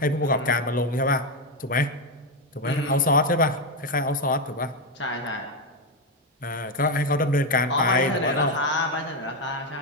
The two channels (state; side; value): normal; both; correlation 0.08